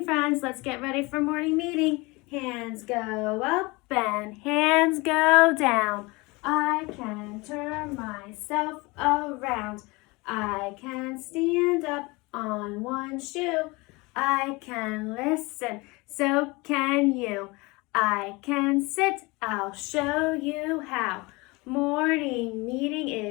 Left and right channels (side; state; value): right; quieter; 24.7 dB